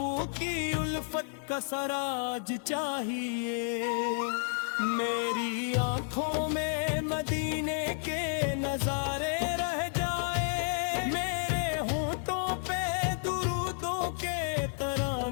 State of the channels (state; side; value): silent; right; 57 dB below the other